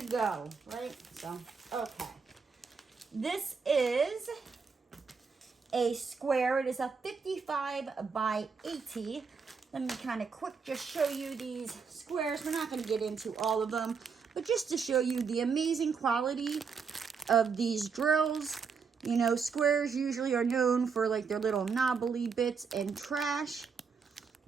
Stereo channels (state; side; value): quieter; left; 5.6 dB